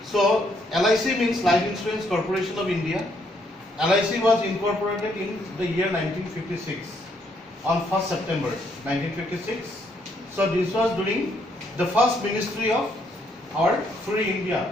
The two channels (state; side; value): normal; both; correlation 0.72